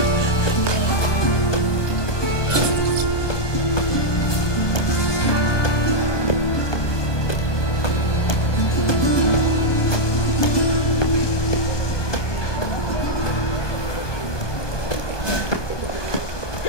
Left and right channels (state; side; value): late; right; 1.2 ms